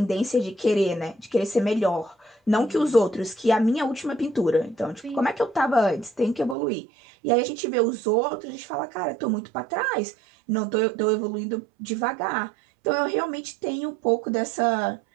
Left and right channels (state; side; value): drops out; left; at 6.6 s